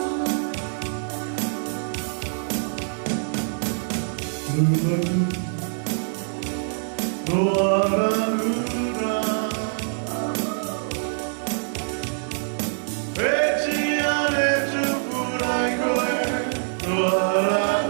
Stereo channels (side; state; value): left; silent; 57 dB below the other